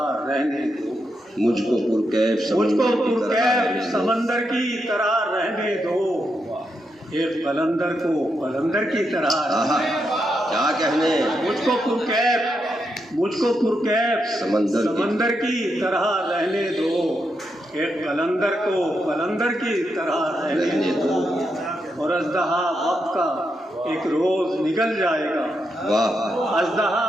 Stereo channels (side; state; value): both; normal; correlation 0.83